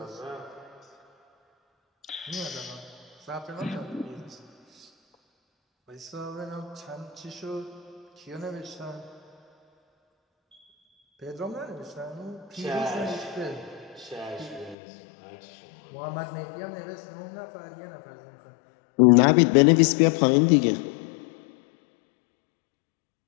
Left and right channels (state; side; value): drops out; right; at 14.8 s